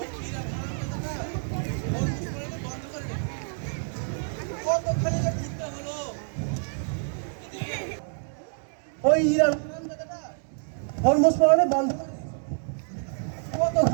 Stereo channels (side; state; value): left; silent; 60 dB below the other